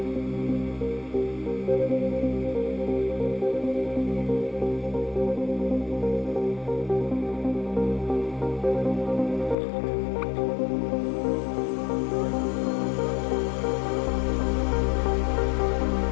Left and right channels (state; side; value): drops out; right; at 9.6 s